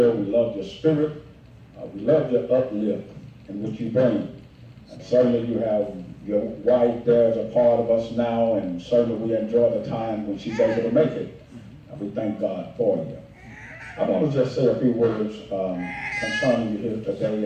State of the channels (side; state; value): both; identical; correlation 1.00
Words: we love your spirit, we love your uplift in which you bring. And certainly you have your wife there as a part of us now, and certainly we enjoy the time when she's able to make it. And we thank God for you. I want to just say a few words concerning you here today